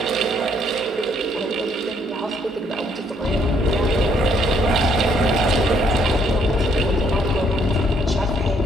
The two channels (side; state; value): both; normal; correlation 0.68